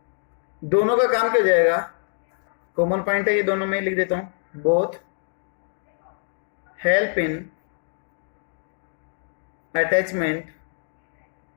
दोनों का काम क्या हो जाएगा, कॉमन पॉइंट है ये दोनों में, लिख देता हूं, both help in attachment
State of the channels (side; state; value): right; silent; digital silence